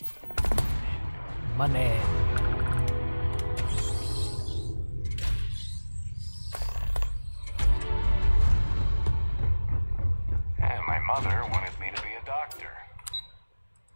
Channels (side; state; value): both; inverted; correlation -1.00